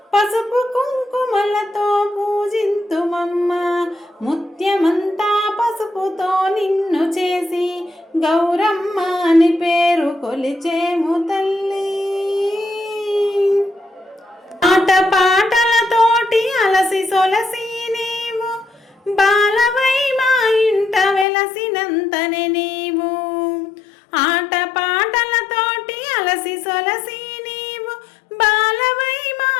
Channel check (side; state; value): right; drops out; at 21.2 s